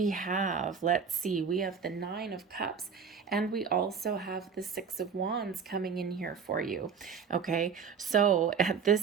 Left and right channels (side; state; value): left; quieter; 6.2 dB